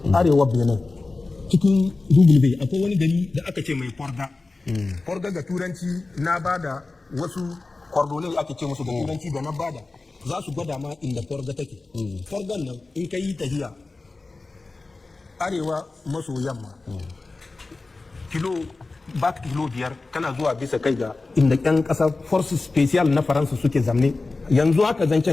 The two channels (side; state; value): right; quieter; 3.5 dB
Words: arewa Benin cikin Dugulbe akwai wani gari da aka ce mai Forga ga turanci na bada wasu kordonai ake ce musu da turanci da na bada za su gwada ma inda Forga take Forgan nan in ka yi tahiya arewa maso yamma kilo 5 kana zuwa bisa kai ga inda yan kasar forces special na Faransa suke zamne yanzu haka